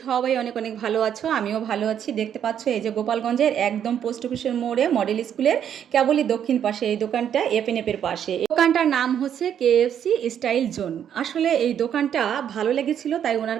সবাই অনেক অনেক ভালো আছো, আমিও ভালো আছি। দেখতে পাচ্ছ এই যে গোপালগঞ্জের একদম পোস্ট অফিসের মোড়ে মডেল স্কুলের কেবলই দক্ষিণ পাশে এই দোকানটা, এপের পাশে। এই দোকানটার নাম হচ্ছে কেএফসি স্টাইল জোন। আসলে এই দোকানটা ভালো লেগেছিল, তাই ওনার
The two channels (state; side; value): quieter; left; 9.2 dB